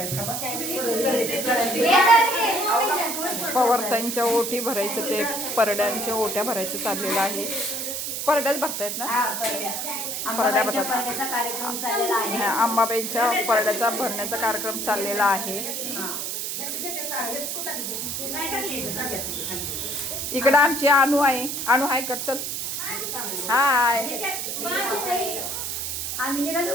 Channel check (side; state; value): right; noise; hiss, 3 dB below the sound